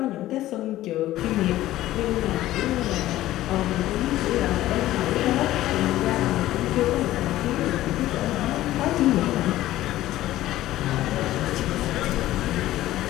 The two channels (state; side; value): quieter; right; 15.0 dB